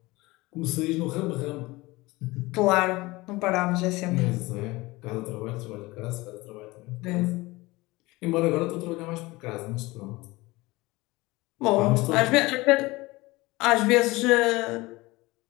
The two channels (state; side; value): quieter; right; 21.4 dB